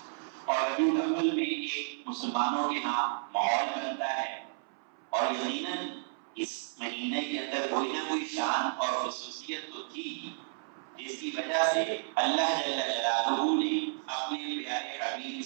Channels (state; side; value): silent; left; 56 dB below the other